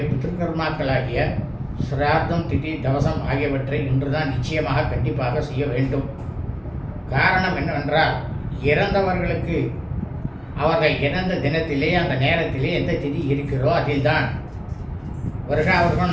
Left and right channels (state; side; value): identical; both; correlation 1.00